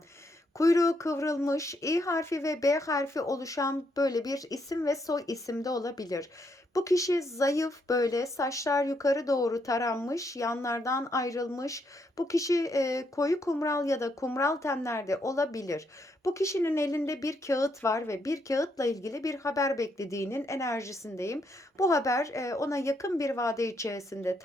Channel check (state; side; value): normal; both; correlation 0.76